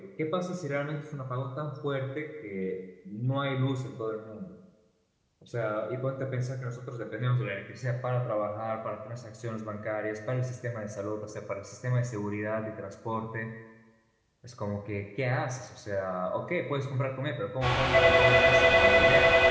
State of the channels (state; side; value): identical; both; correlation 1.00